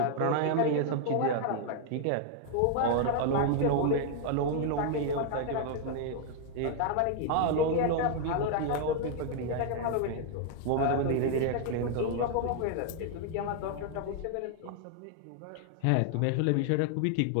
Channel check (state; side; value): different; both; correlation 0.00